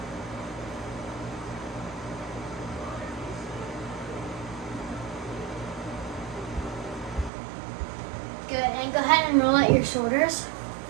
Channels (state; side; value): drops out; left; at 7.3 s